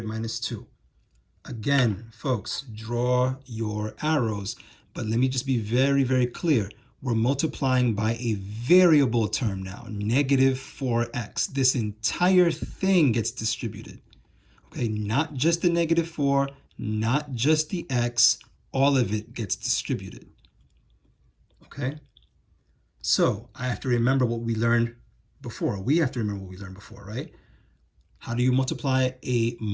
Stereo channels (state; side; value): identical; both; correlation 1.00